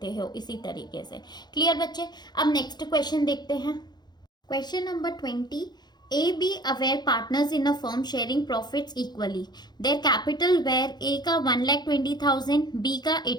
हो इसी तरीके से। क्लियर बच्चे। अब नेक्स्ट क्वेश्चन देखते हैं। Question number 20, A, B were partners in a firm sharing profits equally. Their capital were A का 1,20,000, B का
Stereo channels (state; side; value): late; right; 0.21 ms